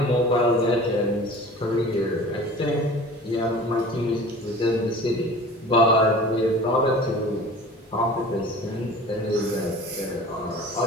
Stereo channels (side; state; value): both; normal; correlation 0.41